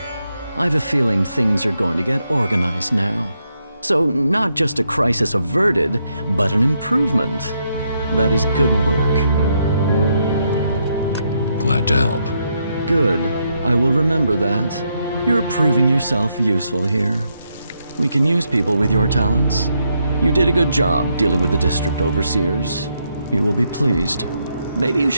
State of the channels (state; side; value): inverted; both; correlation -0.78